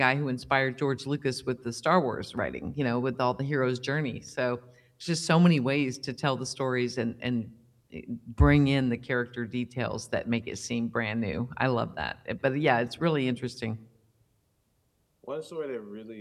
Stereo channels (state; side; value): identical; both; correlation 1.00